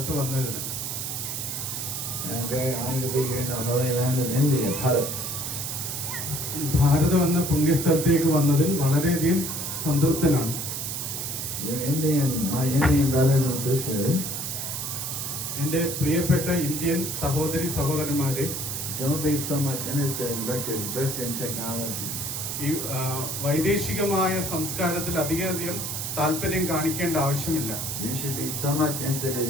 വന്നതിന്. And I'm very honored to be here in the holy land of India, Bharat. ഭാരതം എന്ന പുണ്യസ്ഥലത്തേക്ക് വന്നതിൽ വളരെയധികം സംതൃപ്തനാണ്. My Indian brothers and sisters, എൻ്റെ പ്രിയപ്പെട്ട ഇന്ത്യൻ സഹോദരി സഹോദരന്മാരെ, don't be so much interested in Western technology. ഈ വൈദേശികമായ സംസ്കാരത്തിൽ അധികം താല്പര്യം കാണിക്കേണ്ട ആവശ്യമില്ല. You should be so much interested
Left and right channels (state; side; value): noise; right; hiss, 4 dB below the sound